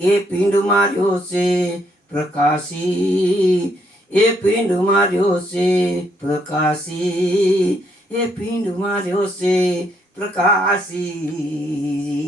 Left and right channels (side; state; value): both; normal; correlation 0.72